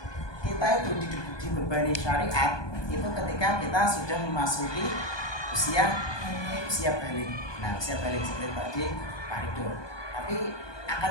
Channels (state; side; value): late; right; 1.2 ms